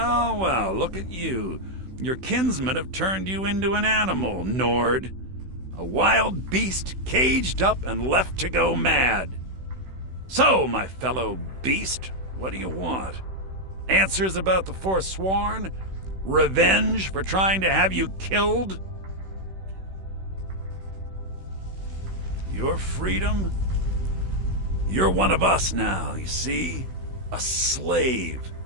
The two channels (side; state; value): left; late; 16 ms